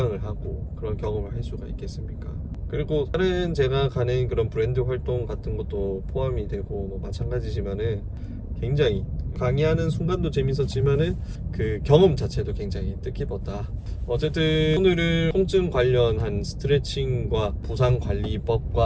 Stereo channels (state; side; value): identical; both; correlation 1.00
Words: 하고 그런 경험을 할 수가 있겠습니까? 그리고 다른 제가 가는 그런 브랜드 활동 같은 것도 포함이 되고 뭐 마찬가지지만은 굉장히 강의하는 순간도 재밌었지만은 그 경험 자체도 굉장히 뜻깊었다. 어쨌든 오늘은 통증 관련한 스트레칭과